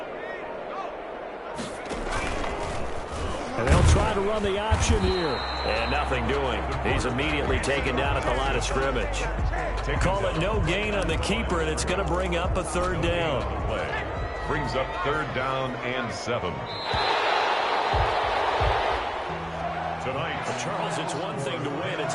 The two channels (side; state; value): both; identical; correlation 1.00